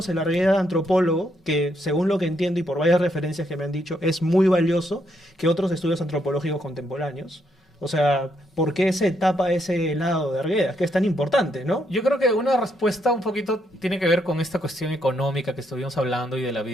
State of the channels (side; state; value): both; normal; correlation 0.76